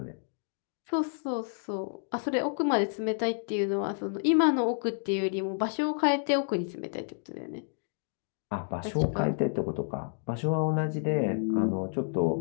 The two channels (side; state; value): right; silent; digital silence